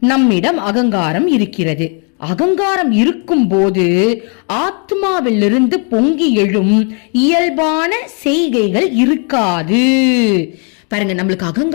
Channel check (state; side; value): quieter; right; 39.2 dB